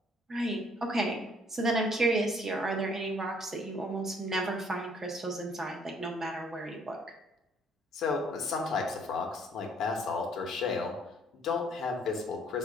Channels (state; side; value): normal; both; correlation 0.62